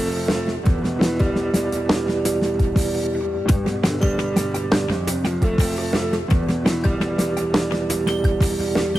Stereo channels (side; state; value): both; normal; correlation 0.93